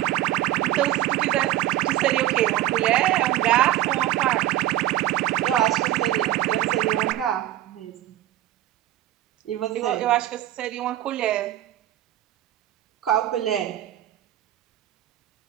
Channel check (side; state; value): left; quieter; 14.0 dB